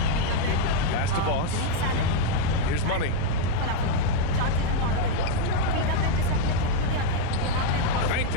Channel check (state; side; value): different; both; correlation 0.00